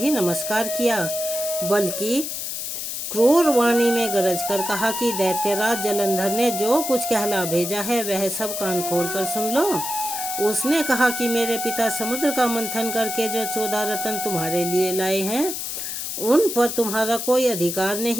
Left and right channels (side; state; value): left; noise; hiss, 5 dB below the sound